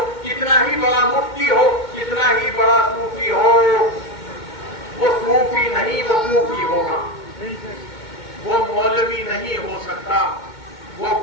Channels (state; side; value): late; right; 2.2 ms